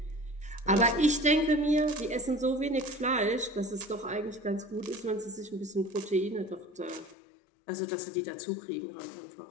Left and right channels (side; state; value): right; drops out; at 7.2 s